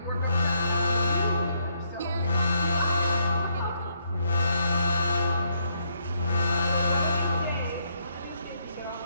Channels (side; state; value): both; inverted; correlation -0.74